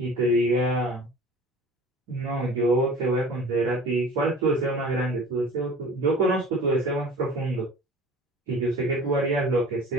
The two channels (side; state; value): both; normal; correlation 0.43